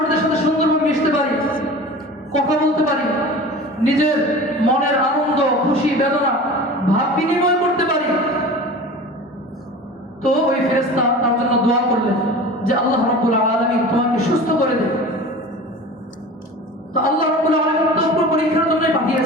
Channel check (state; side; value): normal; both; correlation 0.37